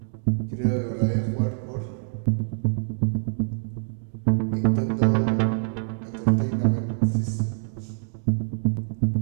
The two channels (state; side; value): silent; left; digital silence